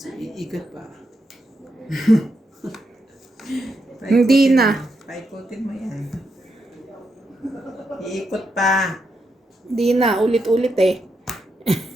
iikot pa. Hindi na. Paikutin mo yan. Iikot pa. Hindi na. Ulit-ulit eh.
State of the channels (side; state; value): both; normal; correlation 0.83